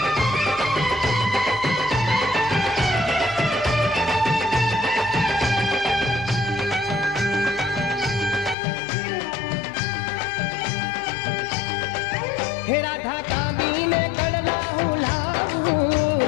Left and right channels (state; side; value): drops out; right; at 8.6 s